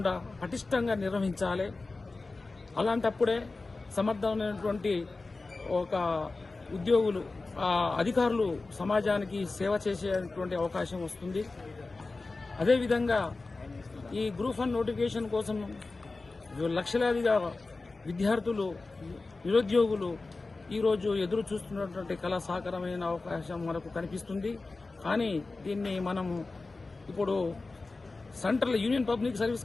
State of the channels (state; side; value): quieter; right; 3.6 dB